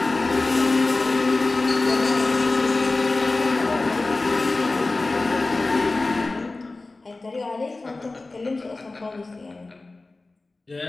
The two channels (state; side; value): quieter; right; 3.3 dB